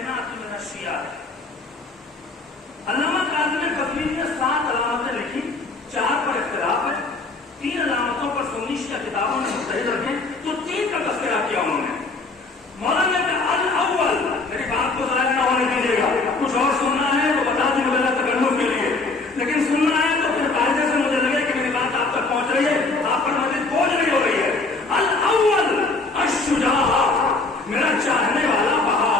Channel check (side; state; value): right; quieter; 3.6 dB